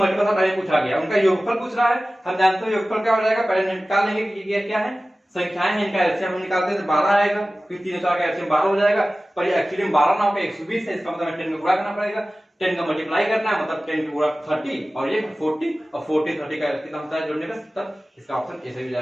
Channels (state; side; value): normal; both; correlation 0.96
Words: टाइप पूछा गया, उनका योगफल पूछ रहा है, हम जानते हैं योगफल क्या हो जाएगा, पहले निकाल लेंगे कि ये क्या है संख्याएं हैं, इनका एलसीएम हम निकालते हैं तो 12 आएगा, फिर 3 और 4 का एलसीएम 12 हो जाएगा, पर ये एक्चुअली में 12 ना होगा 120 है, इसका मतलब 10 में गुणा करना पड़ेगा, 10 का मल्टीप्लाई करना है मतलब 10 का गुणा 30 और ये 40 और 40 30 का कितना होता है जोड़ने का 70, इसका ऑप्शन ऐसे ही